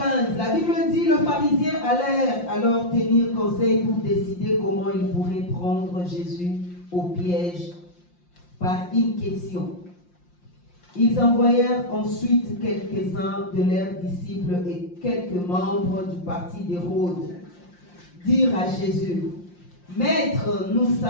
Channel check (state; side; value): late; right; 5.7 ms